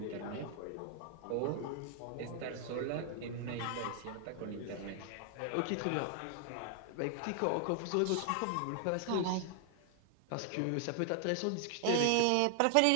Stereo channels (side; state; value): both; different; correlation 0.00